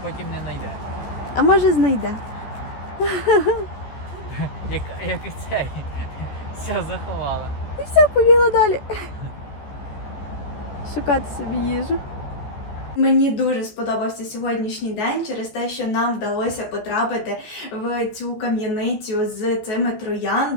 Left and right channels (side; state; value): right; late; 14 ms